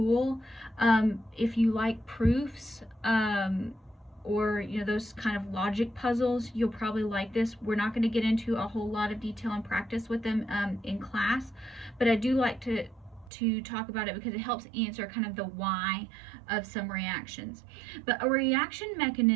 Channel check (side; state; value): left; drops out; at 13.3 s